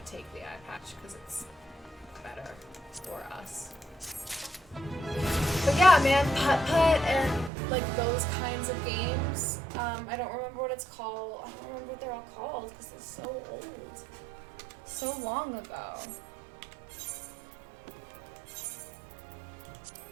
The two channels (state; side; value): drops out; left; at 7.5 s